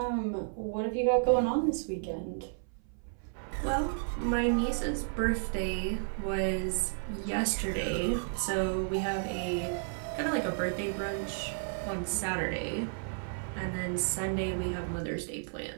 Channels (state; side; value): silent; left; 56 dB below the other